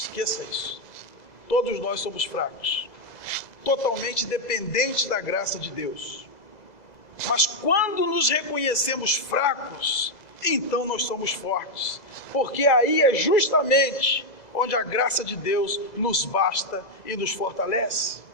isso. Todos nós somos fracos, totalmente dependentes da graça de Deus. Mas quando nos reconhecemos fracos, então nós somos fortes, porque aí é justamente onde a graça de Deus nos basta e nos fortalece.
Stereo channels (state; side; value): late; right; 2.0 ms